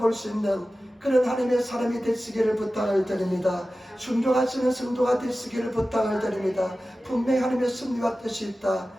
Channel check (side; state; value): both; normal; correlation 0.95